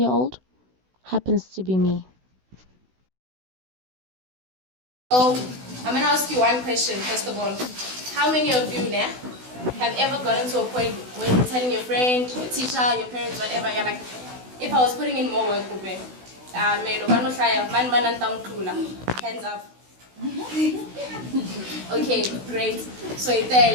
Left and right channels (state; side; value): late; left; 16 ms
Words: happens to be me. So, I'm going to ask you one question, first of all. How many of you now have ever gotten to a point when you're telling your friend, your teacher, your parents, whatever, you're like, if I was putting in more work, hands up. Okay, great. So if